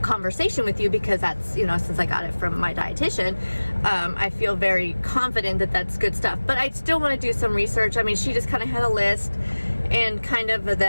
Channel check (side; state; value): both; inverted; correlation -1.00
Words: conversation with you, because that's, you know, since I got it from my dietitian, I feel very confident that that's good stuff. But I still want to do some research. I mean, she just kind of had a list and kind of